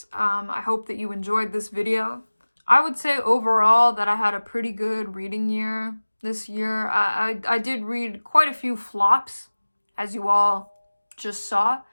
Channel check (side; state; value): both; inverted; correlation -1.00